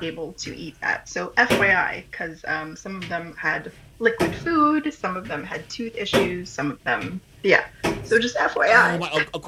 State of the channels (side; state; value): both; identical; correlation 1.00